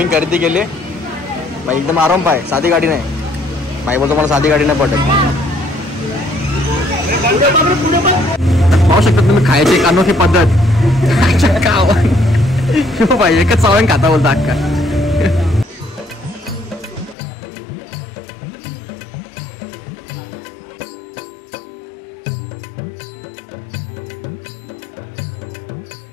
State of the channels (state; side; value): drops out; right; at 17.2 s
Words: खरेदी केली बाई. एकदम आराम पाय, साधी गाडी नाही बाई. बोलतो मला साधी गाडी नाही पडत. पाहू शकता तुम्ही खायची एक अनोखी पद्धत. बाई एकच चावण खाता बोलता अक्का.